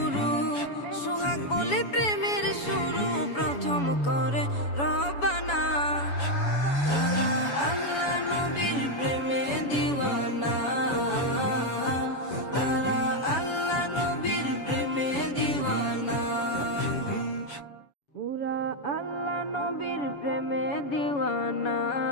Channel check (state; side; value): late; right; 7.1 ms